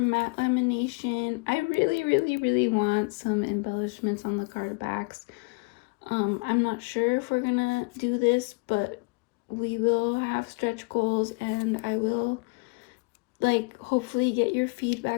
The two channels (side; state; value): right; quieter; 31.6 dB